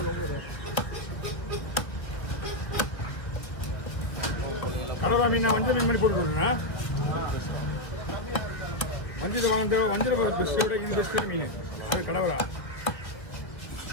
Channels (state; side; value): late; right; 1.4 ms